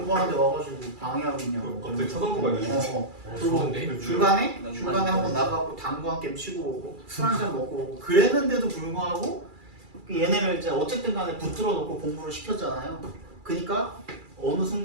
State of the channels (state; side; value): late; left; 2.3 ms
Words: 와가지고 방해하고 있냐고. 갑자기 쳐다보고 있네. 그리고 중간에 한번 나가고 당구 한 게임 치고 오고 술 한 잔 먹고 오고 그랬는데도 불구하고 얘네를 이제 어쨌든 간에 붙들어 놓고 공부를 시켰잖아요. 그러니까 어느